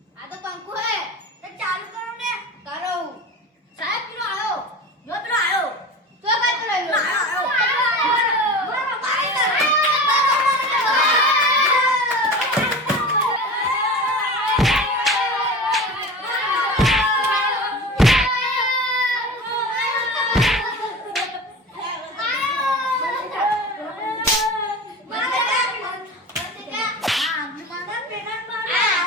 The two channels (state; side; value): normal; both; correlation 0.33